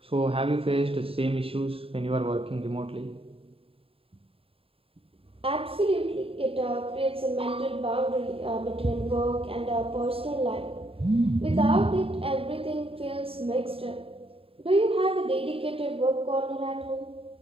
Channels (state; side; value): late; left; 0.27 ms